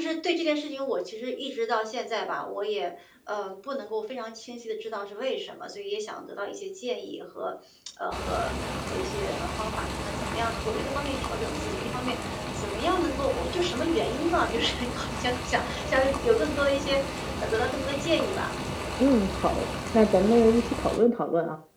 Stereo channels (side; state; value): both; identical; correlation 1.00